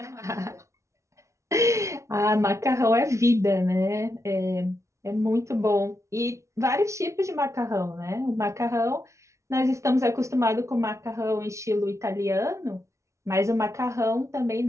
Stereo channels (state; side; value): late; left; 0.14 ms